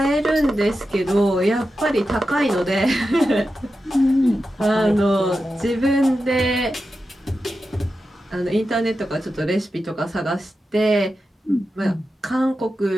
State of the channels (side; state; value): both; normal; correlation 0.91